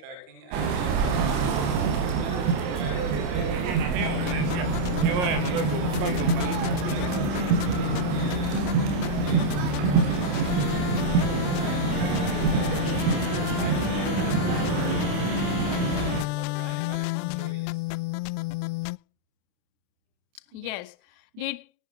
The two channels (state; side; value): late; left; 28 ms